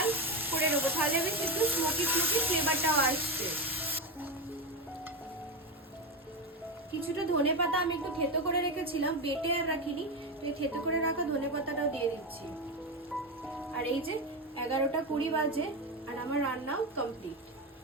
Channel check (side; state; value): both; normal; correlation 0.14